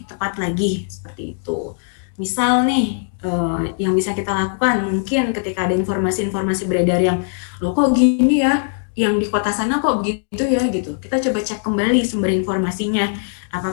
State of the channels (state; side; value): silent; right; digital silence